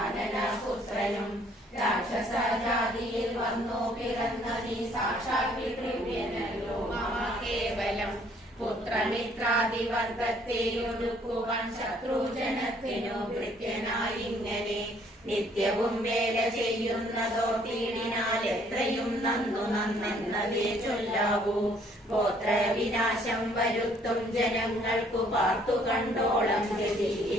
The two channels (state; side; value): normal; both; correlation 0.62